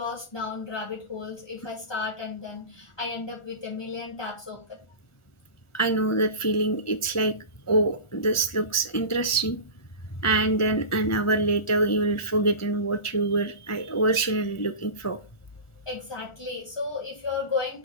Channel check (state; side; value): late; right; 1.4 ms